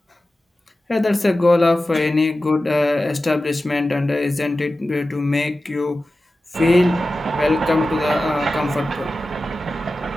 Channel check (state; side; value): normal; both; correlation 0.94